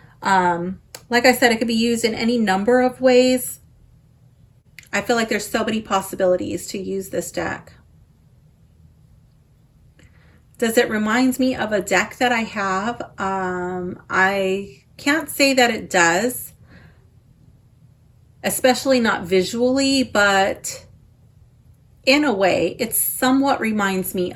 Like I said, it could be used in any number of ways. I feel like there's so many possibilities to use this deck. Does it remind me of a deck that I have? I can't say that it does, especially not visually, but in a way, it somewhat reminds me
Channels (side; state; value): both; identical; correlation 1.00